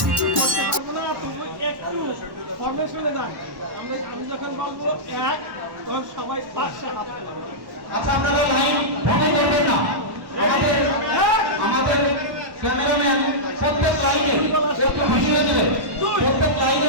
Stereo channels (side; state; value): left; late; 1.1 ms